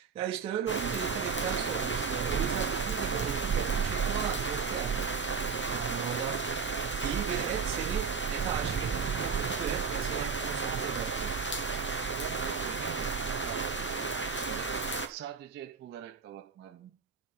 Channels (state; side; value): quieter; left; 5.3 dB